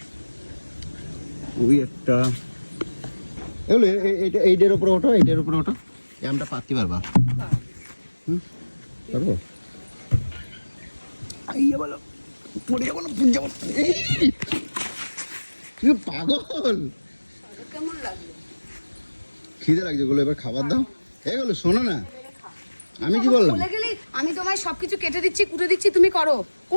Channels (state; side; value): inverted; both; correlation -1.00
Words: ওই একটা এগুলো এইটার উপরে ওঠো, এইটার উপরে ওঠো। এই আমটা পাততে পারবা? পারবো? আইয়া বলো পড়ে যাবো না, পুড়ে যাবো। তুমি পাগল। কেমন লাগলো? খিদে লাগছে গুলো, এবার খাবার দাও। এগুলো শোনো না, আমি কি বললাম? বলে গেলি আমি তোমায় সবকিছু কেটে দিচ্ছি, কুটে দিচ্ছি, তুমি করো।